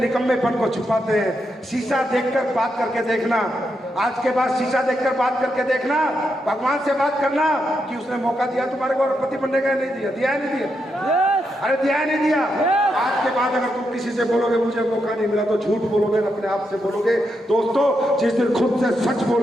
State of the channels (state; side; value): normal; both; correlation 0.83